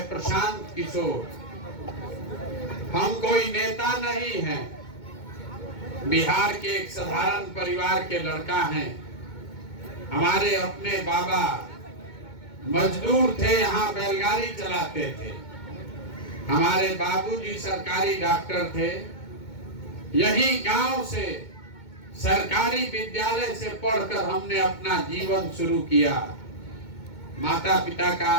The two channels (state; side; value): late; right; 2.2 ms